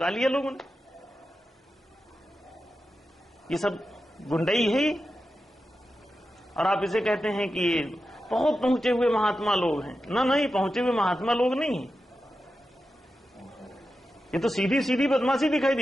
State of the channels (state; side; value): normal; both; correlation 0.90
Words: लिया लोगों ने। ये सब गुंडई है। और आप इसे कहते हैं कि ये बहुत पहुंचे हुए महात्मा लोग हैं। ना नहीं, पहुंचे हुए महात्मा लोग नहीं है। ये तो सीधी सीधी बदमाशी दिखाई